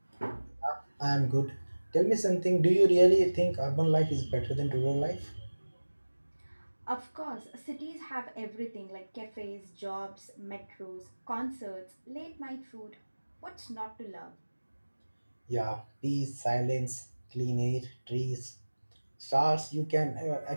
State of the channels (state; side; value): inverted; both; correlation -1.00